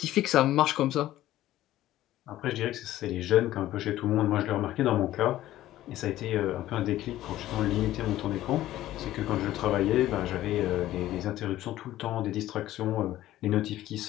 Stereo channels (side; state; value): right; quieter; 14.3 dB